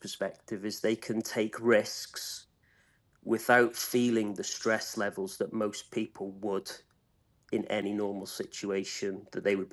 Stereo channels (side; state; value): both; identical; correlation 1.00